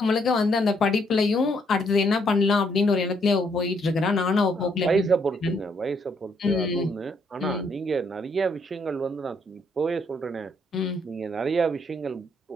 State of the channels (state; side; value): normal; both; correlation 0.71